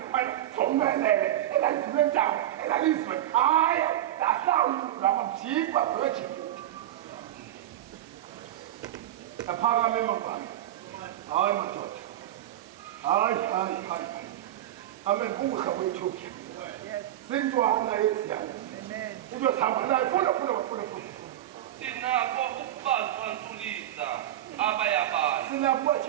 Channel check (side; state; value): left; quieter; 12.9 dB